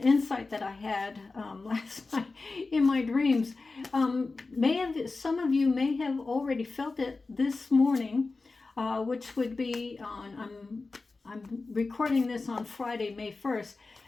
that I had last night in my dreams. Some of you may have already felt it this morning, which would be on. I'm recording this on Friday, May 1st.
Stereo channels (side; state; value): right; quieter; 3.8 dB